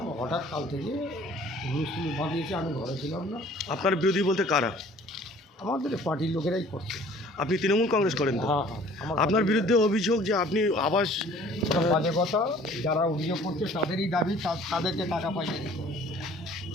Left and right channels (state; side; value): normal; both; correlation 0.52